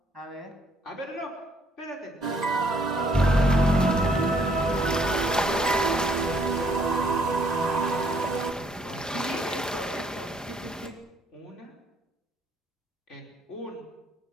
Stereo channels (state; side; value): normal; both; correlation 0.66